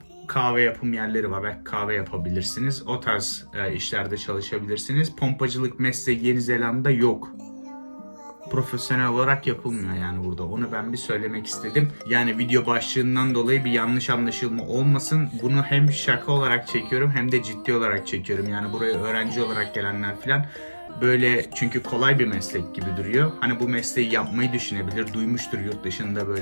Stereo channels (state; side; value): inverted; both; correlation -1.00